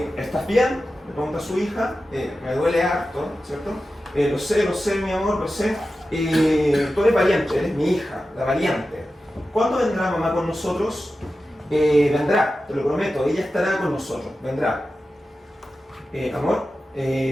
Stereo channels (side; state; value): both; normal; correlation 0.93